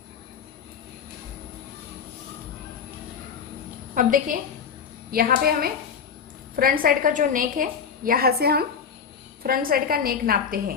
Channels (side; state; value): right; quieter; 6.8 dB